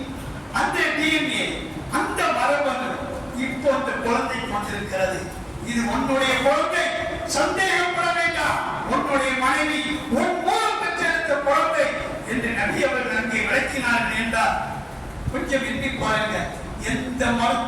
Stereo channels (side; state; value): both; identical; correlation 1.00